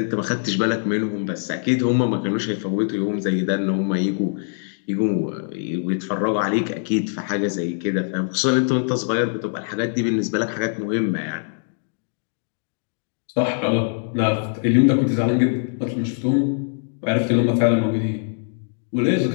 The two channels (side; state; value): right; silent; digital silence